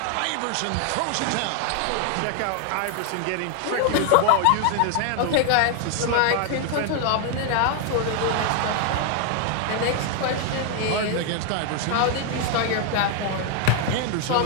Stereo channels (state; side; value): different; both; correlation 0.00